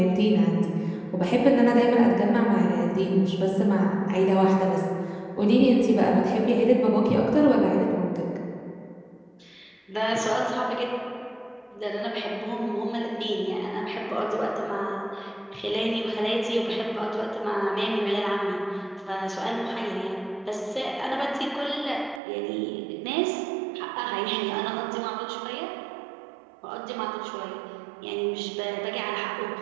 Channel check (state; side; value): drops out; left; at 22.2 s